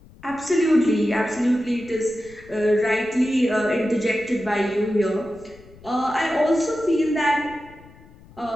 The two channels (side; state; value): left; noise; rumble, 23 dB below the sound